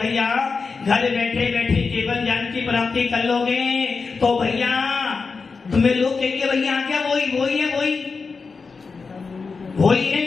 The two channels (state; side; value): quieter; right; 4.7 dB